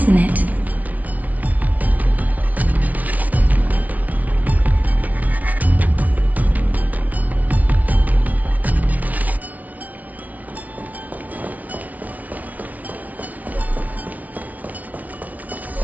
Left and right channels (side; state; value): left; late; 0.072 ms